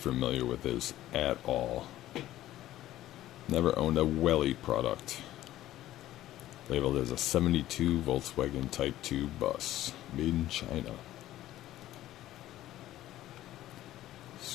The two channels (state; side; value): quieter; right; 14.2 dB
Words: with this at all. Never owned a Welly product. Labeled as a 72 Volkswagen Type 2 bus. Made in China.